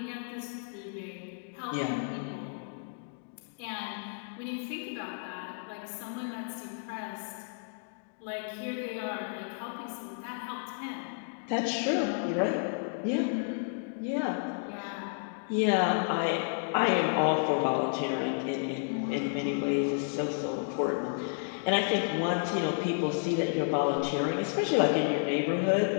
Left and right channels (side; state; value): right; silent; digital silence